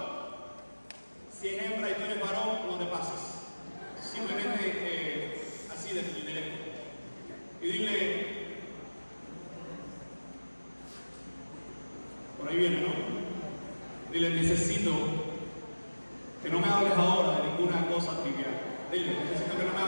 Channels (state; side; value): inverted; both; correlation -1.00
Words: Si es hembra y tú eres varón, no te pases. Simplemente así de lejos. Y dile, por ahí viene, ¿no? Dile, necesito que no me hables ahora de ninguna cosa trivial. Dile, necesito que no me